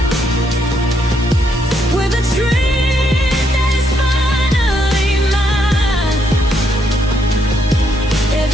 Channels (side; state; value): both; normal; correlation 0.75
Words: with a dream that is finally mine.